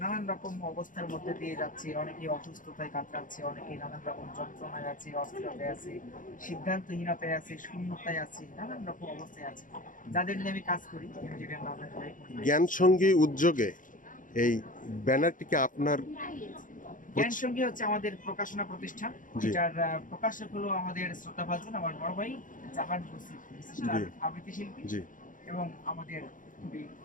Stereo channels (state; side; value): late; right; 0.38 ms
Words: নানান রকম অবস্থার মধ্যে দিয়ে যাচ্ছে। অনেকে অসুস্থতায় কাতরাচ্ছে, অনেকে নানান রকম যন্ত্রণায় আছে, অস্থিরতায় আছে, সিদ্ধান্তহীনতায় আছে, শূন্যতায় আছে, নানান রকম অবস্থায় আছে, যাদের নিয়ে আমি কাজ করি। যেটা নাম জ্ঞান সঙ্গী উদ্যোগে এই ব্যানারটিকে আপনার জ্ঞান সঙ্গী হচ্ছে আমাদের প্রকাশনা প্রতিষ্ঠান, জি যেটার প্রকাশক হলো আমাদের শ্রোতাভাজন আমার বড় ভাই জাহান বসির, বিশিষ্ট জি আবৃত্তি শিল্পী জি এবং আমাদের খুবই